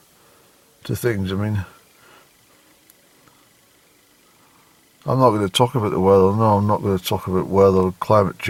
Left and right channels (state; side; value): identical; both; correlation 1.00